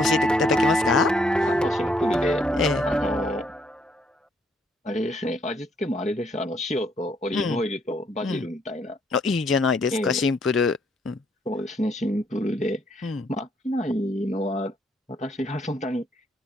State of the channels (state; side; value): normal; both; correlation 0.70